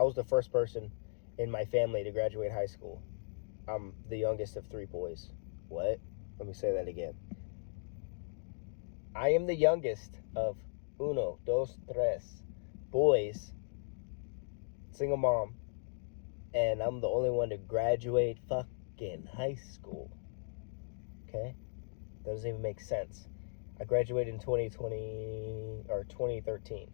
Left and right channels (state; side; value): silent; right; digital silence